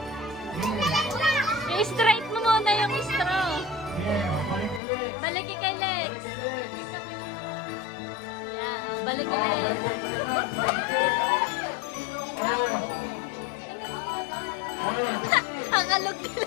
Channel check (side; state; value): right; drops out; at 4.8 s